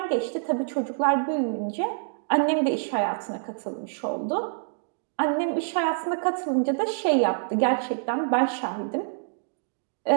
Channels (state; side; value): silent; left; digital silence